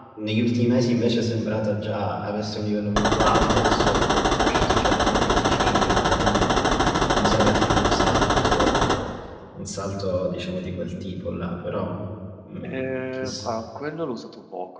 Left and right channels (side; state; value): both; identical; correlation 1.00